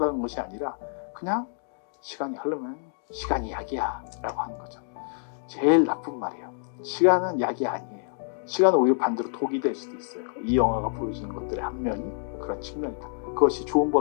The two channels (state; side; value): silent; right; 60 dB below the other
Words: 것이 아니라 그냥 시간이 흐르면 시간이 약이야 라고 하는 거죠. 제일 나쁜 말이에요. 시간은 약이 아니에요. 시간은 오히려 반대로 독이 될 수도 있어요. 이 영화가 보여주는 것들의 한 면이 그런 측면이다. 그것이 좋은